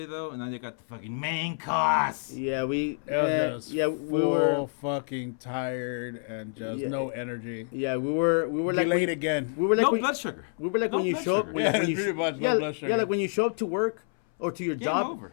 though, and then they got the fucking main course. Yeah, we We were were fucking tired and just Yeah. no energy. we were like Delayed when, again. we were like No when, blood sugar. we were like No when you blood show up sugar. when, Yeah, when you pretty much no yeah, blood sugar. yeah, like when you show up to work or to your Game job over.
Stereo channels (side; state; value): right; silent; 59 dB below the other